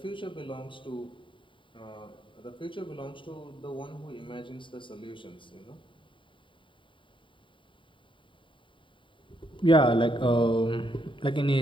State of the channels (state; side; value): late; right; 0.24 ms